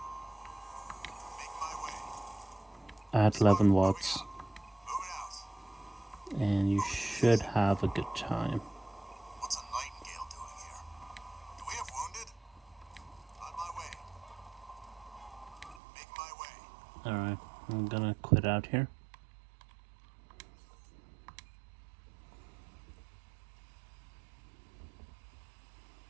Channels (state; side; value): drops out; left; at 15.8 s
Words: Making my way. at 11 watts, Moving out. and you should have a good time. What's a Nightingale doing here? Do we have wounded? On my way. Making my way. Alright, I'm gonna quit out here.